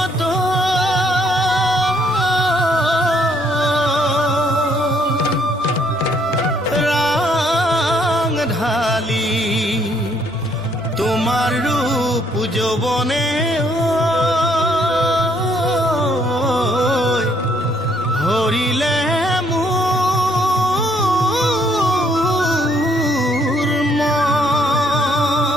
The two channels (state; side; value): normal; both; correlation 0.68